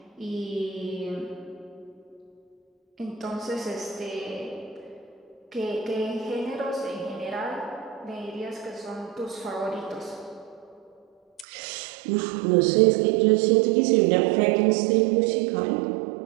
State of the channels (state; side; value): drops out; left; at 11.5 s